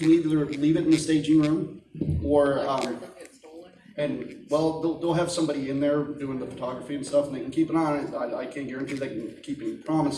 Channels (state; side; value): identical; both; correlation 1.00